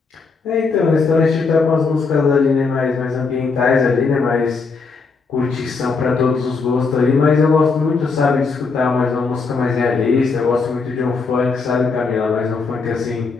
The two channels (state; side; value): quieter; right; 4.6 dB